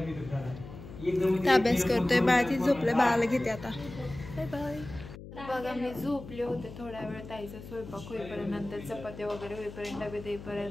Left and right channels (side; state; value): left; noise; hum, 14 dB below the sound